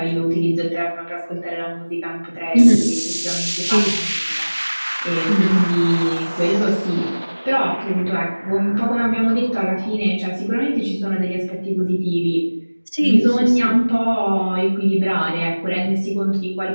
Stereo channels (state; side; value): inverted; both; correlation -1.00